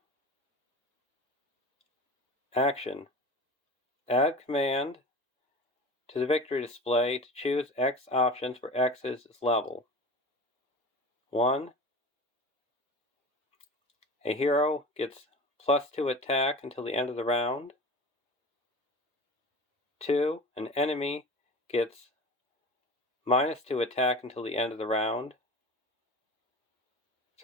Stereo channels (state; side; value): normal; both; correlation 0.35